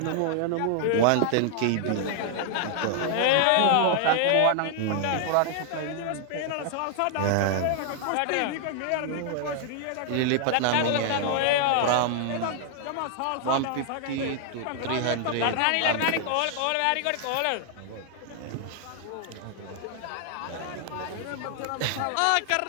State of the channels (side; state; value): both; different; correlation 0.00